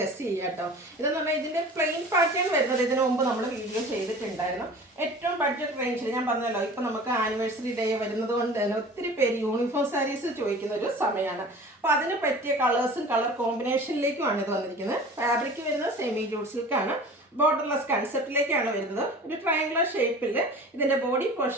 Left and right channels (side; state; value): both; normal; correlation 0.41